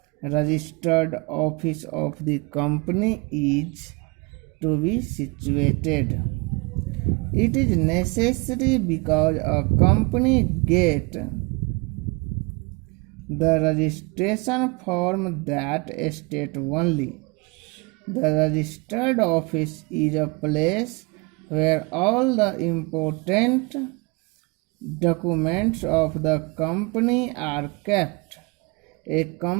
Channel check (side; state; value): left; quieter; 28.6 dB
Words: registered office of the company is to be situated. It is necessary because a company gets the registration from that state only. The registered office is a place where all the important documents of the company are kept. A